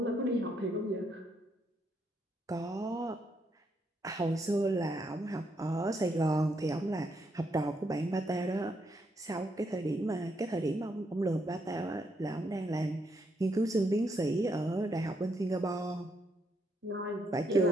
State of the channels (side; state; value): both; normal; correlation 0.76